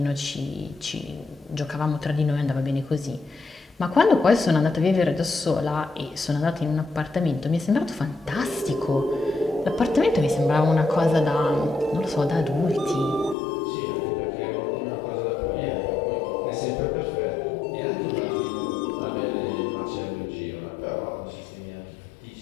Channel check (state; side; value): drops out; right; at 13.4 s